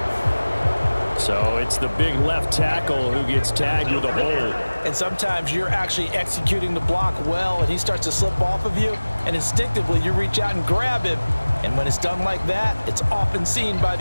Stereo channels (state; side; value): inverted; both; correlation -1.00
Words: So it's the big left tackle who gets tagged with a hold. And sometimes you're actually executing the block well, and he starts to slip off of you, and instinctively you reach out and grab him. And when it's done like that, it's often seen by